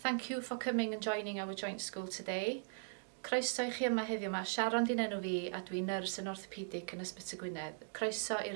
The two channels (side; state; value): left; silent; digital silence